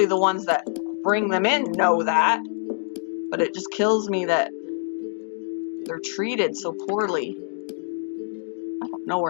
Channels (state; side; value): silent; right; digital silence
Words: the ones that bring them in know that, but it just kills me that they're treated so poorly. I don't know